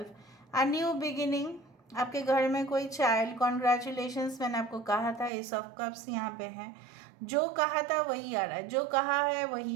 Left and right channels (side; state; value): left; drops out; at 5.3 s